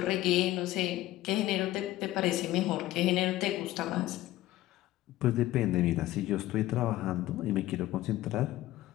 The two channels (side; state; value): right; quieter; 15.8 dB